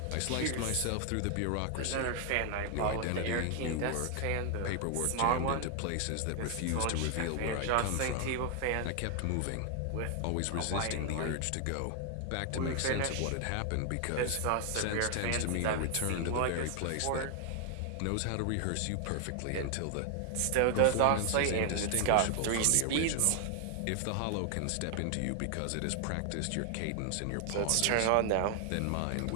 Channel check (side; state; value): both; different; correlation 0.00